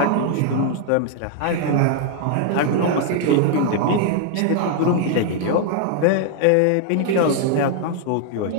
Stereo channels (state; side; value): different; both; correlation 0.00